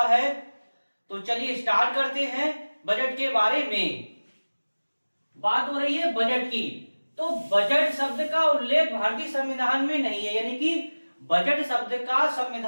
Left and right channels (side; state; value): both; inverted; correlation -1.00